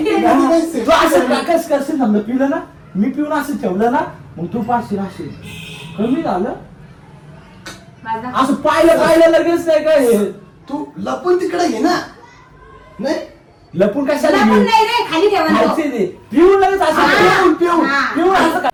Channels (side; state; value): both; identical; correlation 1.00